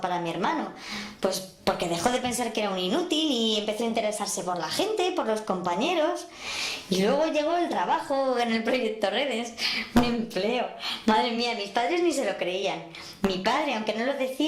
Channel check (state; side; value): identical; both; correlation 1.00